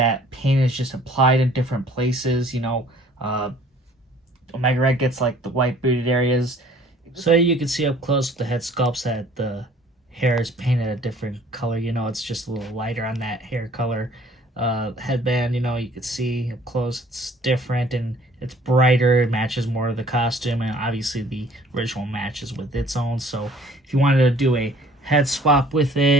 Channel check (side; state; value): both; normal; correlation 0.55